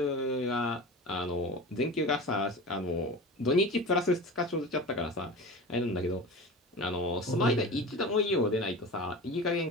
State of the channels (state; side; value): normal; both; correlation 0.32